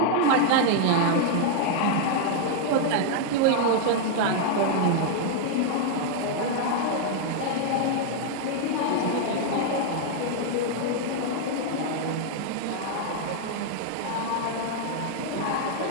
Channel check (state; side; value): different; both; correlation 0.00